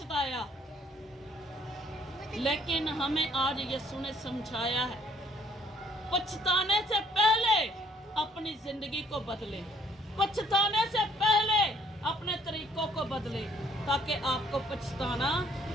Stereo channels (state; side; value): normal; both; correlation 0.63